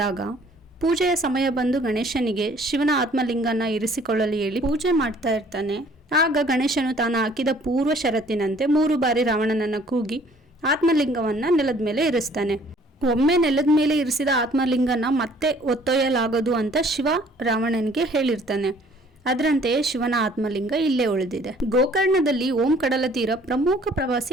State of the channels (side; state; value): both; normal; correlation 0.57